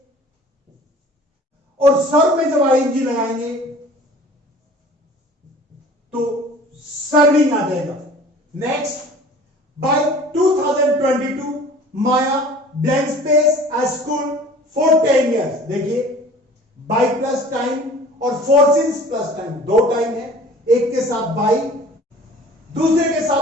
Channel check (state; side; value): normal; both; correlation 0.46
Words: और सर्व में जब आईएनजी लगाएंगे तो सर्विंग आ जाएगा। Next, by 2022 Maya blank space at school for 10 years। देखिए बाय प्लस टाइम और फोर सिंस प्लस टाइम, दो टाइम है, एक के साथ बाय दूसरे के